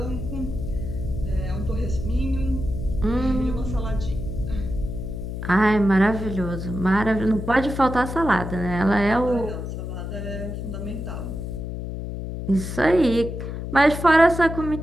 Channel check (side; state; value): left; noise; hum, 6 dB below the sound